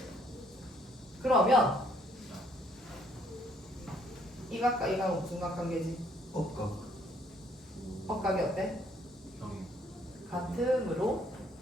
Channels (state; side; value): normal; both; correlation 0.65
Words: 그러면 이 각과 이 각은 무슨 각관계지? 억각. 억각이 어때? 형이. 같으므로